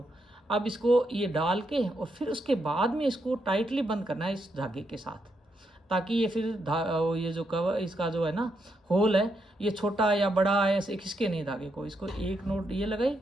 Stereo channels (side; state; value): both; normal; correlation 0.80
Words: अब इसको ये डाल के और फिर उसके बाद में इसको टाइटली बंद करना है इस धागे के साथ, ताकि ये फिर ये जो कवर इसका जो है ना होल है, ये छोटा या बड़ा है ऐसे खिसके नहीं धागे को। इसको एक नोट ये लगाई,